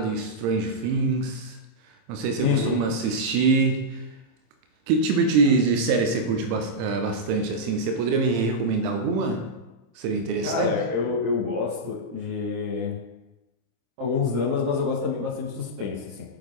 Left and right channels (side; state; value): left; late; 26 ms